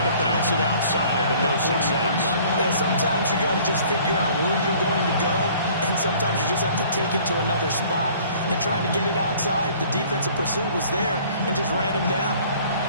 to bounce it outside, but no success. Yeah, sometimes you got to just figure out where you're going to go, and sometimes you just have to take it to another spot. And trying to get it outside, the defensive pursuit was there and just ran him down.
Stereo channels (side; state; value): both; inverted; correlation -0.53